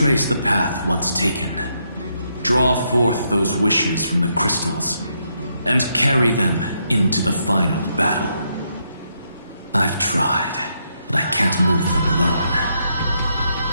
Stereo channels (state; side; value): inverted; both; correlation -0.78